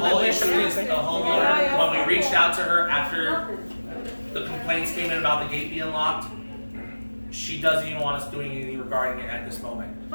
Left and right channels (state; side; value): inverted; both; correlation -1.00